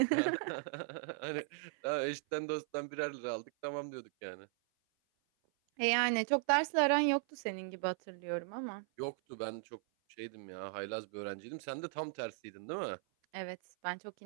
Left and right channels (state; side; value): silent; left; 52 dB below the other